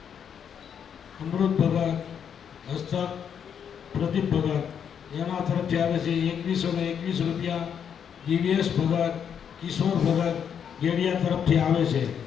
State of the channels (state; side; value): quieter; right; 7.9 dB